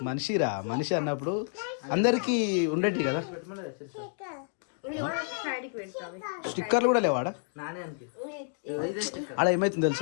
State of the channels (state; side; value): silent; right; digital silence